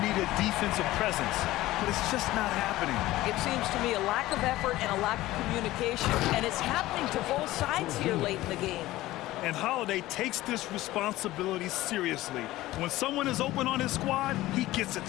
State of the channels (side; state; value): right; quieter; 16.8 dB